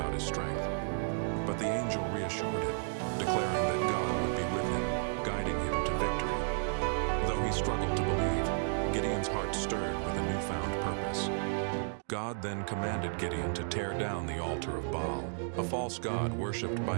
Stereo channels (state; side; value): silent; left; digital silence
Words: his strength. But the angel reassured him, declaring that God would be with him, guiding him to victory. Though he struggled to believe, Gideon's heart stirred with a newfound purpose. God then commanded Gideon to tear down the altar of Baal, a false god worshipped by